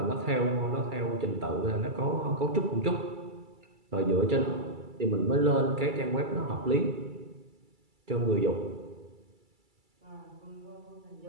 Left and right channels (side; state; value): left; late; 2.3 ms